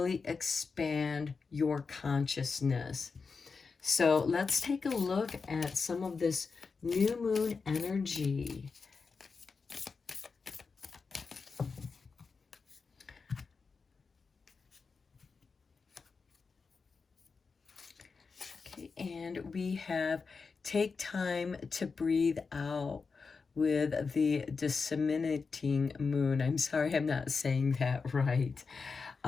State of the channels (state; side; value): quieter; right; 4.9 dB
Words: expand your consciousness. So let's take a look at some of this new moon energy. Okay, and we have take time to breathe out with the disseminating moon. I'm sorry, I'm not saying that right.